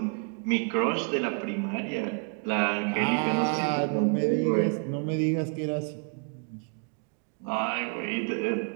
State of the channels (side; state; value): left; quieter; 39.1 dB